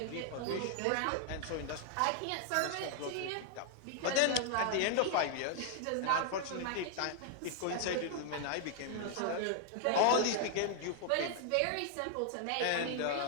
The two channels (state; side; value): different; both; correlation 0.00